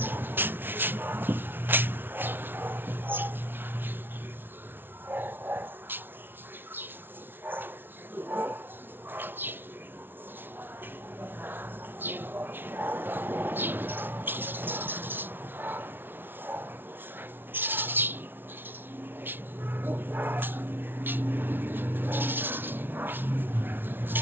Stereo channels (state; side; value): late; left; 0.10 ms